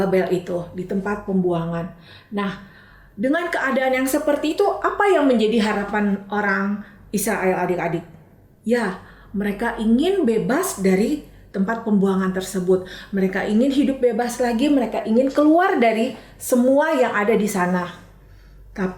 itu, di tempat pembuangan. Nah, dengan keadaan yang seperti itu, apa yang menjadi harapan orang Israel adik-adik? Ya, mereka ingin bebas dari tempat pembuangan tersebut. Mereka ingin hidup bebas lagi, mereka ingin keluar dari semua yang ada di sana.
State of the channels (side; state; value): both; identical; correlation 1.00